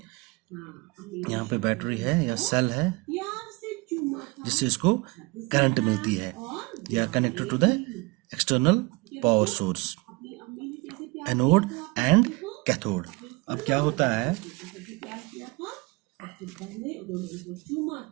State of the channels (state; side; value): quieter; left; 25.6 dB